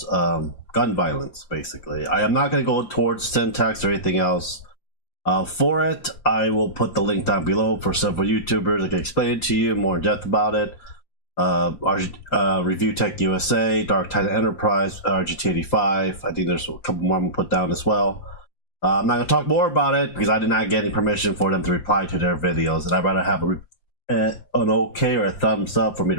gun violence, basically. I am not going to go towards syntax or anything else. For it, I will put the link down below for several YouTubers that can explain it to you more in depth about it. ReviewTech USA, Dark Titan Enterprise, RGT85. I think there's a couple more I'm going to put down as well. I'm not going to talk more about it because I did not get any permission for them to reply to their videos, and I'd rather have an okay or a thumbs up for me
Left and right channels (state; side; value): late; right; 5.8 ms